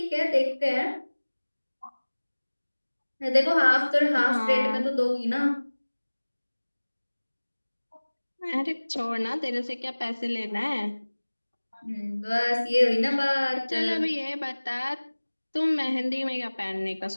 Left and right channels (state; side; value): inverted; both; correlation -1.00